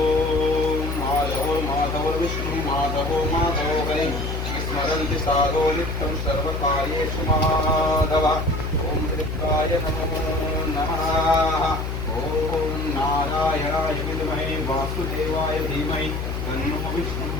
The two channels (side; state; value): left; noise; hum, 3 dB below the sound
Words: विष्णु माधवो माधवो हरि स्मरन्ति साधो नित्यं सर्वकार्येषु माधव। ओम ऋक्काय नमो नमः। ओम नारायणाय विद्महे वासुदेवाय धीमहि तन्नो विष्णुः